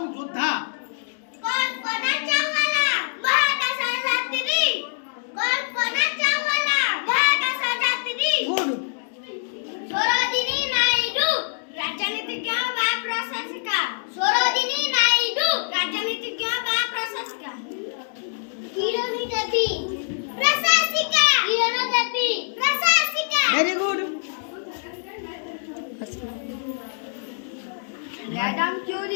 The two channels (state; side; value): silent; right; digital silence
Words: योद्धा? कल्पना चावला महाकाशयात्री। कल्पना चावला महाकाशयात्री। गुड। सरोजिनी नायडू राजनीतिज्ञ व प्रशासिका। सरोजिनी नायडू राजनीतिज्ञ व प्रशासिका। किरण देवी प्रशासिका। किरण देवी प्रशासिका। Very good. मैडम